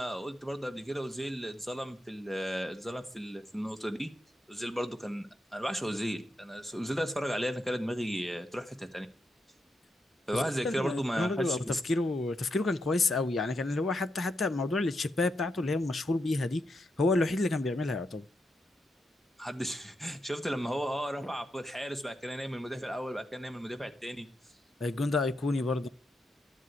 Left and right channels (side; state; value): both; normal; correlation 0.83